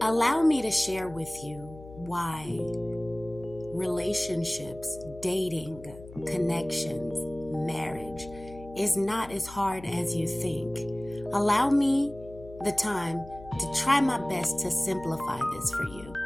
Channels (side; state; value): left; noise; hum, 17 dB below the sound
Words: Allow me to share with you why relationships, dating, connections, marriage is not as hard as you think. Allow me the time to try my best to simplify this for you.